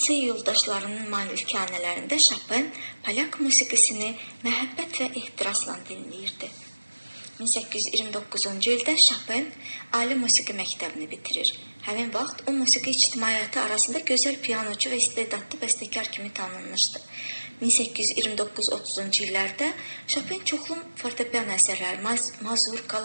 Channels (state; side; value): inverted; both; correlation -1.00